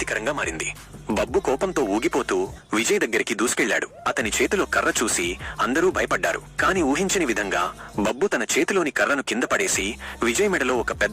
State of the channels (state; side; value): identical; both; correlation 1.00